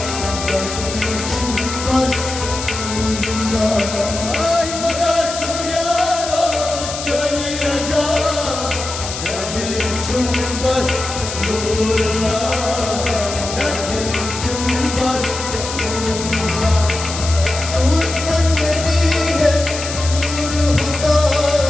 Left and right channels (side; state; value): left; noise; hiss, 7 dB below the sound